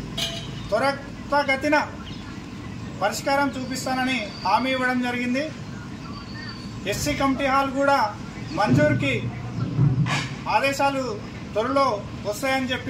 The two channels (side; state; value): both; identical; correlation 1.00